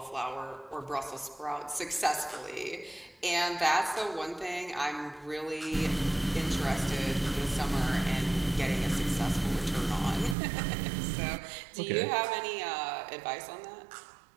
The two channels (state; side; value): drops out; left; at 10.4 s